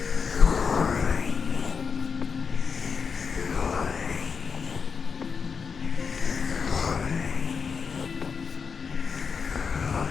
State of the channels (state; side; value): quieter; right; 5.7 dB